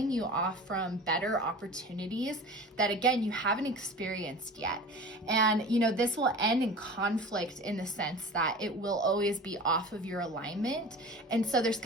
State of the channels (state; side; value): normal; both; correlation 0.37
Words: you off from better opportunities that, again, you haven't experienced yet. And this will end in conflict in the sense that it will always be off of your alignment. And so there's